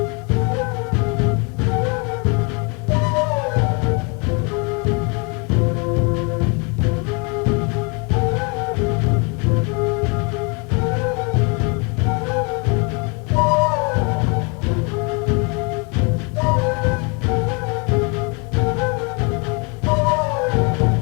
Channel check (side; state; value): right; quieter; 33.0 dB